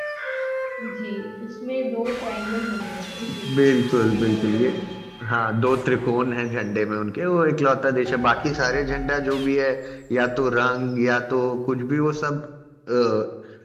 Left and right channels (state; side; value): identical; both; correlation 1.00